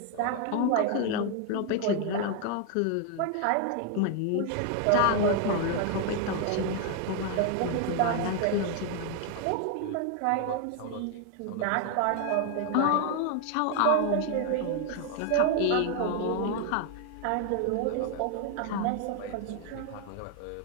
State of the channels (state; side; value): different; both; correlation 0.00